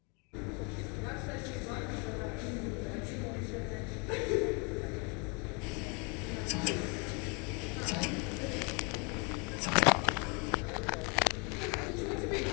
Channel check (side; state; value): right; quieter; 32.6 dB